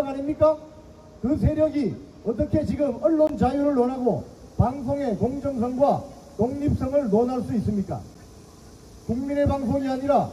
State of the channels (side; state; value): both; identical; correlation 1.00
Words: 아닙니까? 그 세력이 어떻게 지금 언론 자유를 논하고 방송의 공정성과 독립성을 논할 수 있습니까? 국민의 방송이 아니라